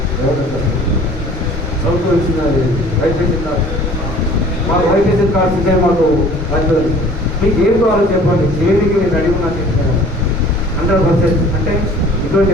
ప్రభుత్వం ఇచ్చిన వైద్య కార్డు మాకు వైద్య కార్డ్స్ ఉంటే మాకు వస్తుంది. మీకు ఏం కావాలో చెప్పండి చేయడానికి నేను అడిగి నాకు చెప్తాను 100%. అంటే ఇటువంటి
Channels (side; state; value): both; normal; correlation 0.50